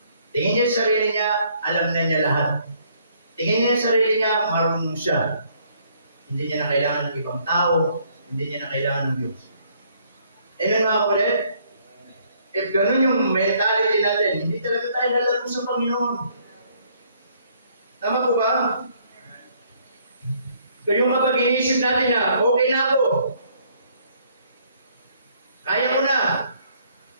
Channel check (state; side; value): inverted; both; correlation -0.65